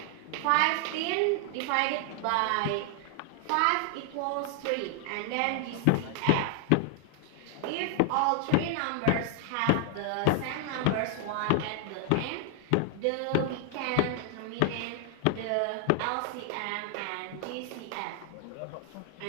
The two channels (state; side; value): different; both; correlation 0.00